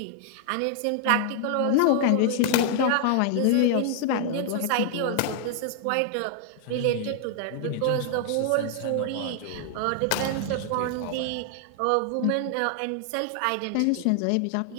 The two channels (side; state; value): both; different; correlation 0.00